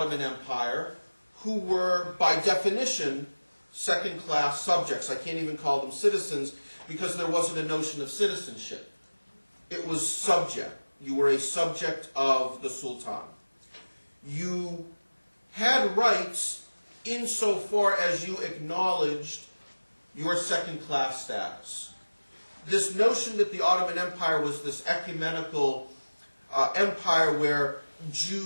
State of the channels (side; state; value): both; inverted; correlation -1.00